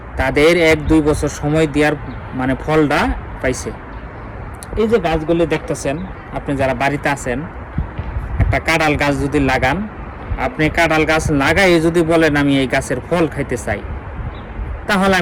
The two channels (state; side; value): identical; both; correlation 1.00